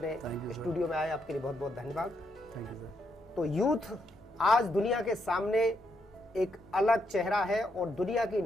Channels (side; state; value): both; normal; correlation 0.78